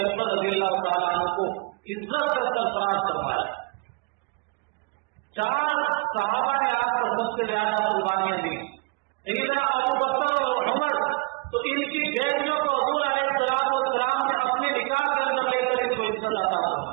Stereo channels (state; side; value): quieter; left; 27.8 dB